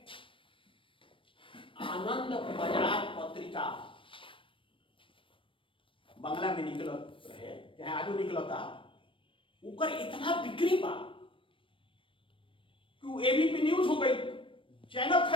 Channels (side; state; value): right; late; 0.25 ms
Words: आनंद बाजार पत्रिका बंगला में निकलत रहे चाहे आजू निकलता ऊपर इतना बिक्री बा कि एबीपी न्यूज हो गई, चैनल